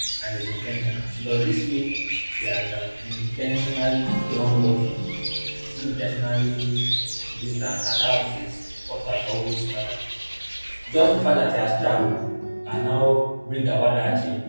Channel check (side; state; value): both; inverted; correlation -1.00